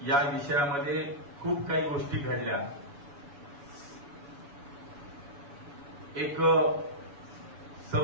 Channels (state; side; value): late; left; 7.0 ms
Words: या विषयामध्ये खूप काही गोष्टी घडल्या। एक